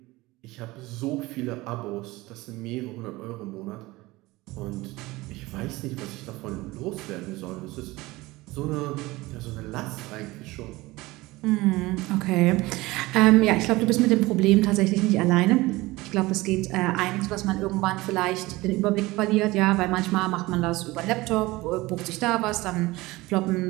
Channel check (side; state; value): left; quieter; 20.3 dB